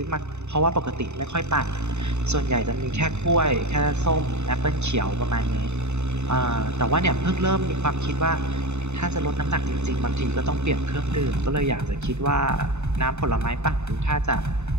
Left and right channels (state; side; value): late; left; 0.82 ms